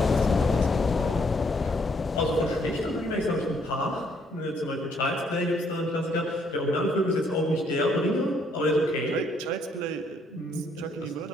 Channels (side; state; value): both; normal; correlation 0.69